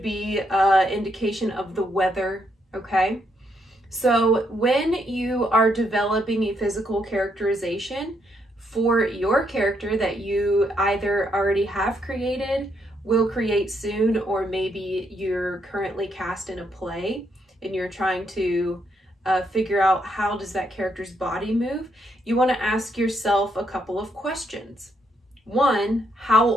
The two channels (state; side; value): normal; both; correlation 0.76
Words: be indication of the weather, okay? So when you are developing a physical characterization for your character that you either already have created, will create soon, or maybe you're currently cast in a play and you're trying to figure out how does that character's body move, you want to ask yourself a couple of questions. One, how